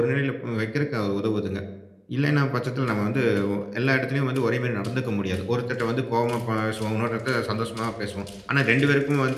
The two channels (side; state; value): both; identical; correlation 1.00